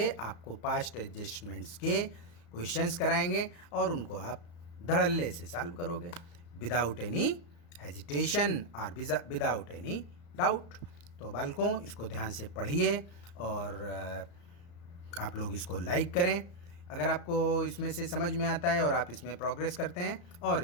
आपको पास्ट एडजस्टमेंट्स के क्वेश्चंस कराएंगे और उनको आप धड़ल्ले से सॉल्व करोगे विदाउट एनी हेजिटेशन और विदाउट एनी डाउट। तो बालकों इसको ध्यान से पढ़िए और आप लोग इसको लाइक करें अगर आपको इसमें से समझ में आता है और आप इसमें प्रोग्रेस करते हैं और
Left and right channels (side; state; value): right; late; 34 ms